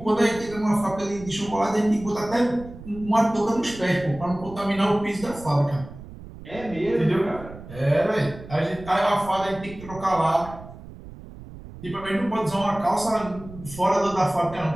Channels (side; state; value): right; noise; rumble, 15 dB below the sound